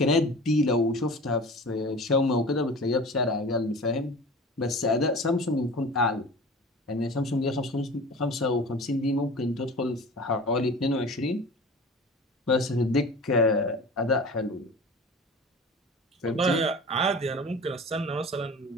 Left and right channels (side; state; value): both; normal; correlation 0.38